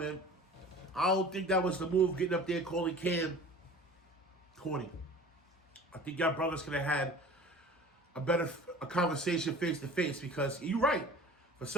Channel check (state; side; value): normal; both; correlation 0.42